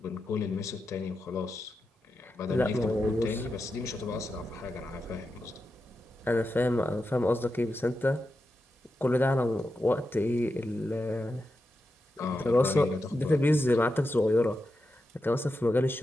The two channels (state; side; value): normal; both; correlation 0.89